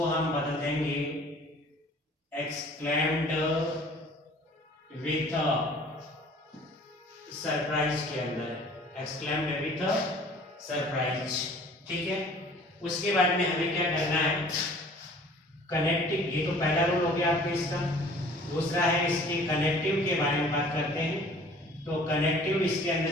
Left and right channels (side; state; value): both; normal; correlation 0.50